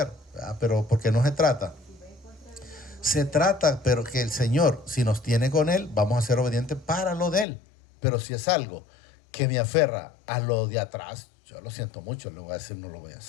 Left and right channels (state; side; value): drops out; right; at 7.5 s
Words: ¿verdad? Pero porque no se trata. Se trata, pero que el Señor, si nos tiene con Él, vamos a ser obedientes para lo de Él. Pero si es algo que me aferra a lo de atrás, yo lo siento mucho, le voy a decir, no lo voy a